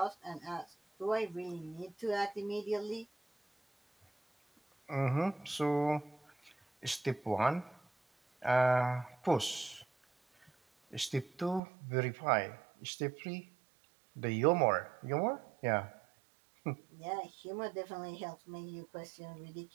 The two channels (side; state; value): left; drops out; at 11.6 s